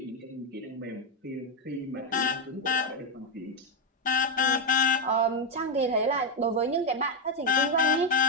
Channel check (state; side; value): normal; both; correlation 0.04